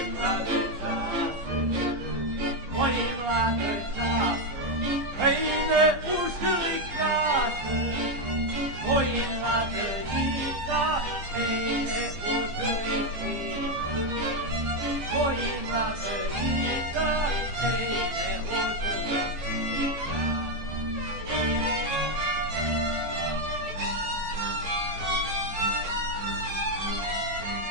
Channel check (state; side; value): late; left; 14 ms